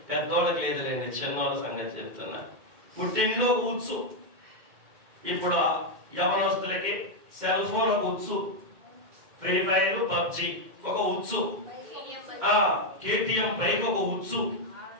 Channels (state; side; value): late; left; 2.1 ms